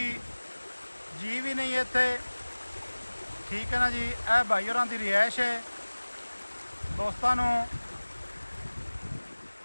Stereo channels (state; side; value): inverted; both; correlation -1.00